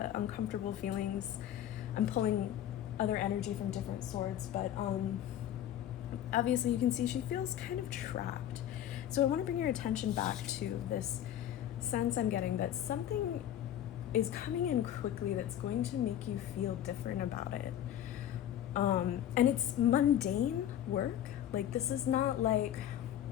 uncomfortable feelings. I'm pulling other energy from different swords, but obviously you can see she feels kind of trapped. So I want to bring your attention back to this sense I'm getting that something is coming in quickly that's going to make you feel different about it. And it's mundane work. Like, this is not like,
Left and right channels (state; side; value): quieter; right; 11.2 dB